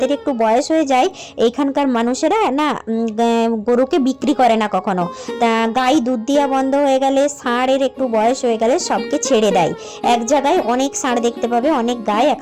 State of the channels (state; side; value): identical; both; correlation 1.00